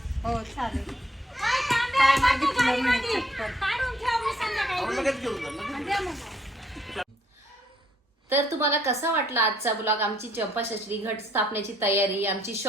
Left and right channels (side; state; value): both; normal; correlation 0.67